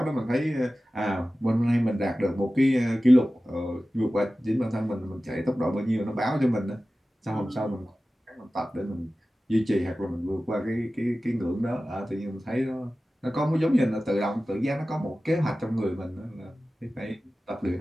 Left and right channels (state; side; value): normal; both; correlation 0.96